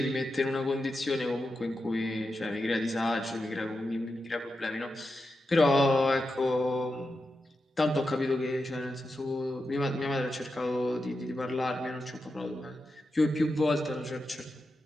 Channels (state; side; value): normal; both; correlation 0.89